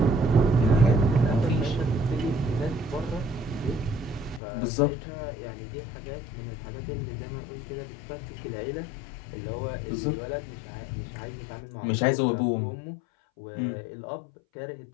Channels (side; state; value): right; drops out; at 4.4 s